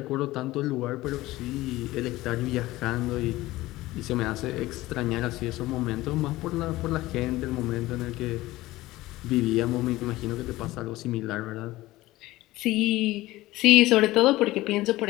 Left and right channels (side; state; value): right; quieter; 17.9 dB